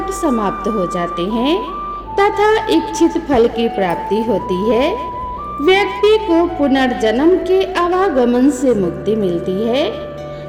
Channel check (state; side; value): identical; both; correlation 1.00